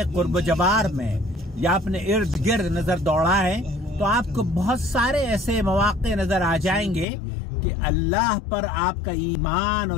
कुर्ब जवार में या अपने इर्द गिर्द नजर दौड़ाएं तो आपको बहुत सारे ऐसे मौके नजर आ जाएंगे कि अल्लाह पर आपका ईमान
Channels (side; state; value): right; drops out; at 7.1 s